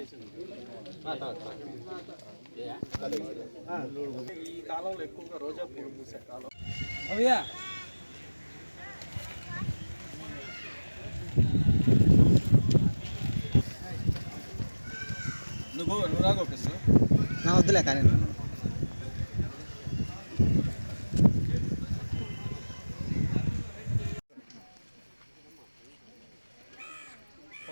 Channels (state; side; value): inverted; both; correlation -1.00